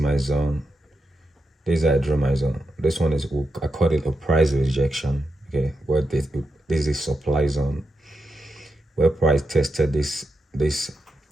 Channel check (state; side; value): normal; both; correlation 0.87